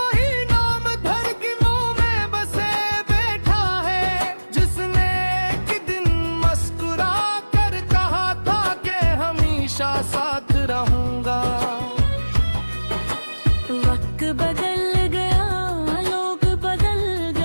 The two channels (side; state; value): both; inverted; correlation -1.00